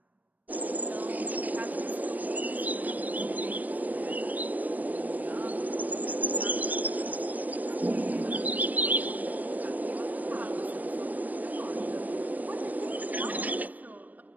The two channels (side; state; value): left; late; 0.080 ms